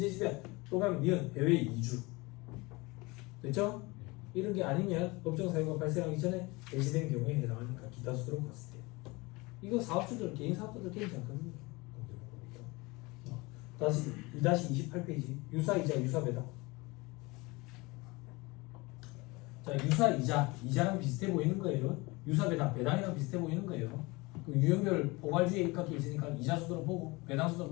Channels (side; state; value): right; quieter; 24.1 dB